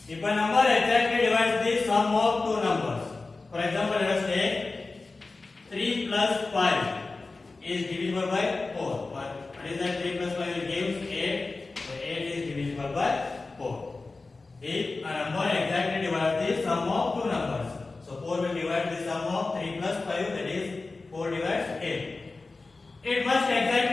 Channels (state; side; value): quieter; right; 3.6 dB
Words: if a number exactly divides the sum of two numbers. For example, let us say 3 plus 5 is divisible by 4. What is that? 3 plus 5 gives 8. So 8 is divisible by 4. If a number exactly divides the sum of two numbers. So 4 will divide the sum of 3 plus 5, that is 4 divides 8. It must